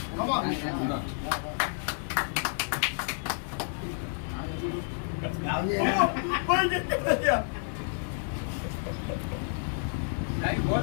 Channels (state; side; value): silent; right; digital silence